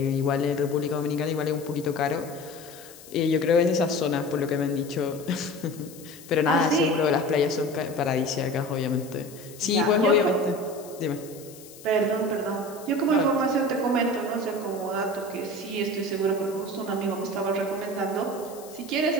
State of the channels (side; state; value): left; noise; hiss, 19 dB below the sound